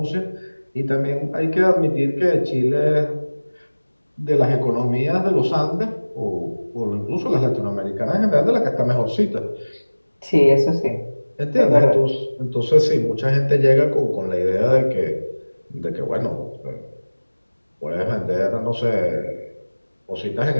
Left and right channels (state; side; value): inverted; both; correlation -1.00